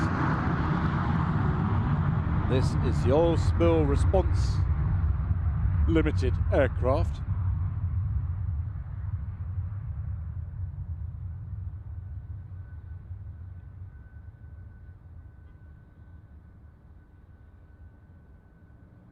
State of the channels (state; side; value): identical; both; correlation 1.00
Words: This is the Oil Spill Response Limited aircraft.